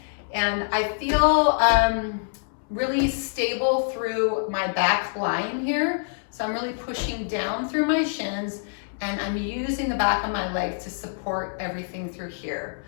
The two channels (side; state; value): right; silent; 61 dB below the other